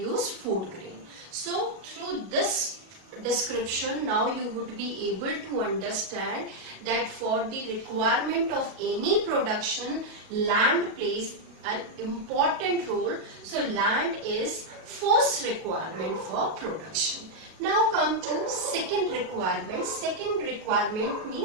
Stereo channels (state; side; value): late; left; 37 ms